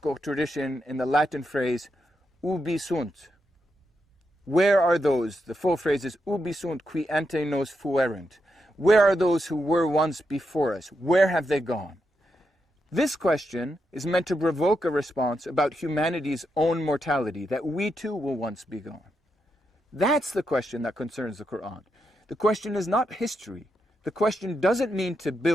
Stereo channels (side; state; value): both; normal; correlation 0.84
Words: tradition in the Latin phrase, ubi sunt? Where are those? The full phrase is, ubi sunt qui ante nos fuerent? Where are those who were once before us? Where have they gone? This question is meant to provoke a response about humanity's own mortality, that we too will once be gone. That's the question that concerns the Quran. The question is not history. The question doesn't mean to